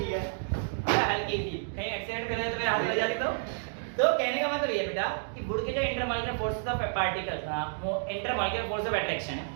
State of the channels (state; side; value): silent; left; digital silence